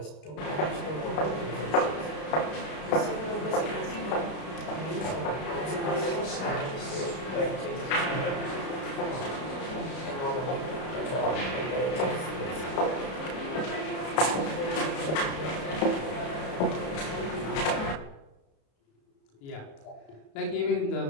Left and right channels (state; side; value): late; right; 32 ms